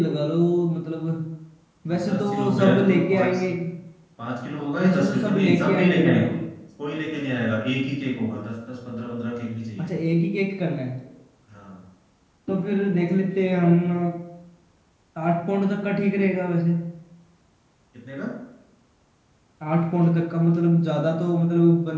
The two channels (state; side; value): identical; both; correlation 1.00